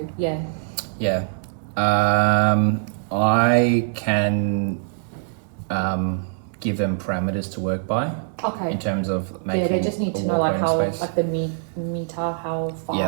yeah. Yeah. I can give them parameters to work by. Okay. In terms of making. Yeah, they just need to know how the meter, how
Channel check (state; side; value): silent; left; digital silence